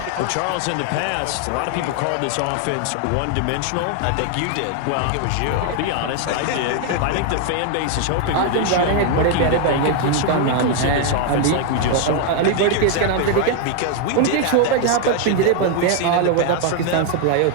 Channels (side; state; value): both; different; correlation 0.00